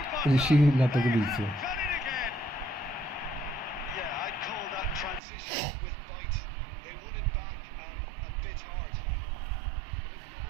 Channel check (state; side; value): drops out; left; at 5.2 s